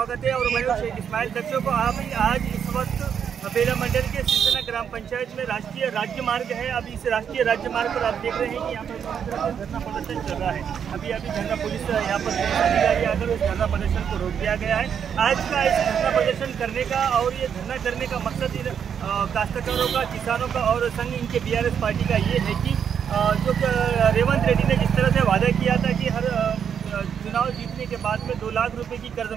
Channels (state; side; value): quieter; left; 7.8 dB